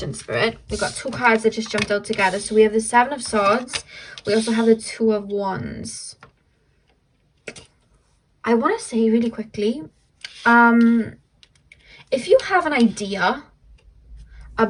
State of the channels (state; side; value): identical; both; correlation 1.00